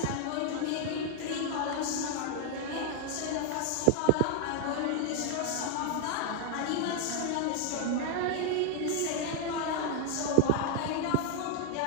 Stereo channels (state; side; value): different; both; correlation 0.00